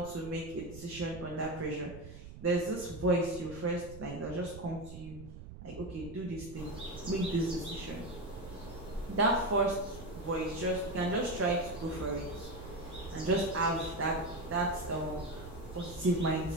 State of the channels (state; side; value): noise; right; rumble, 13 dB below the sound